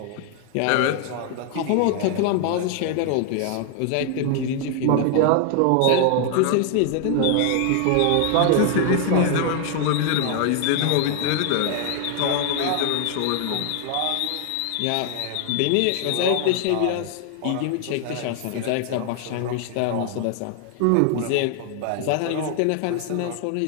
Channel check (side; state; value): both; different; correlation 0.00